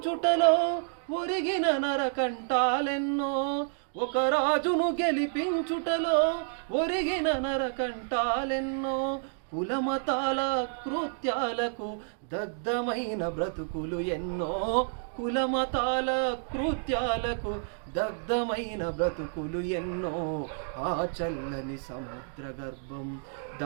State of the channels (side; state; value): left; silent; digital silence